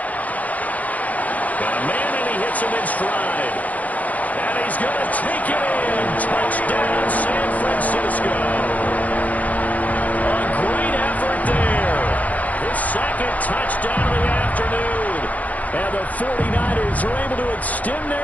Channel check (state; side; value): late; right; 0.075 ms